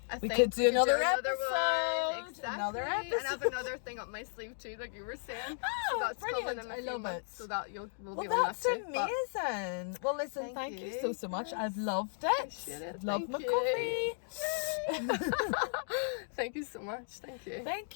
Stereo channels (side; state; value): right; silent; digital silence